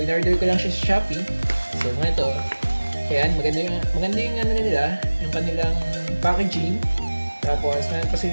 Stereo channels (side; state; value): both; inverted; correlation -1.00